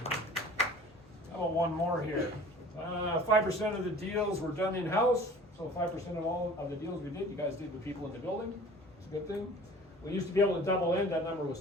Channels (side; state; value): both; normal; correlation 0.45